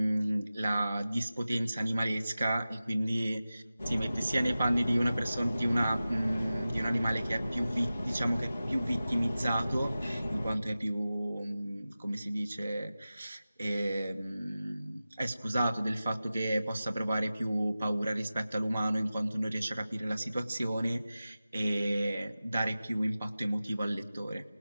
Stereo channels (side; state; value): both; inverted; correlation -0.95